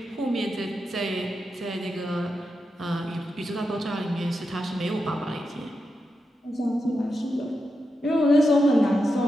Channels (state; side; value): normal; both; correlation 0.87